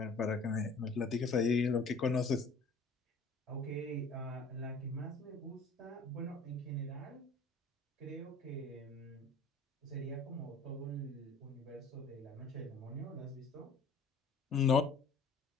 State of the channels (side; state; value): right; quieter; 3.7 dB